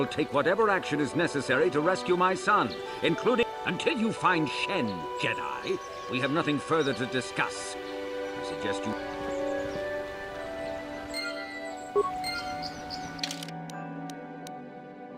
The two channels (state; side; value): identical; both; correlation 1.00